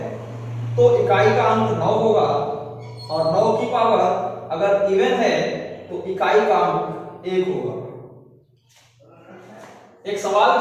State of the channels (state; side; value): identical; both; correlation 1.00